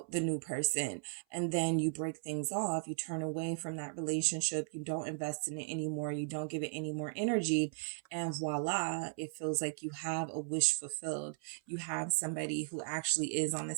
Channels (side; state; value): left; silent; 53 dB below the other